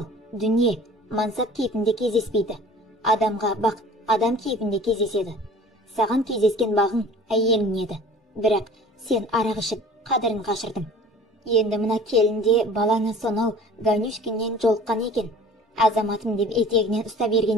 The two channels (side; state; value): both; normal; correlation 0.46